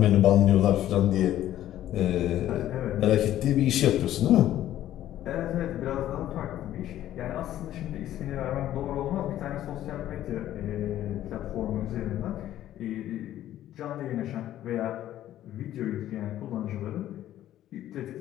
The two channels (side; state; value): right; quieter; 12.7 dB